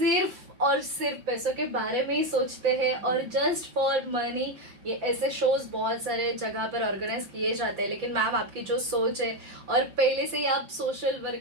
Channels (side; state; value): left; late; 5.8 ms